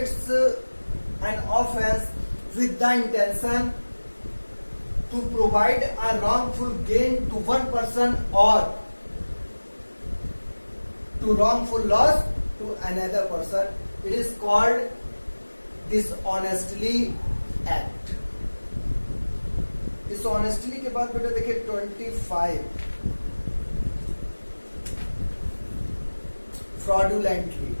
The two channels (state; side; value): inverted; both; correlation -1.00